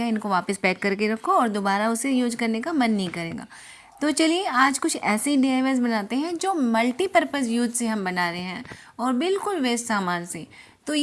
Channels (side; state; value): both; identical; correlation 1.00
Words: इनको वापस पैक करके रखो और दोबारा उसे यूज करने का मन नहीं करेगा। तो चलिए आज कुछ ऐसे डीआईवाईज बनाते हैं जो मल्टीपर्पज़ यूज से हम बना रहे हैं और बिल्कुल वेस्ट सामान से। तो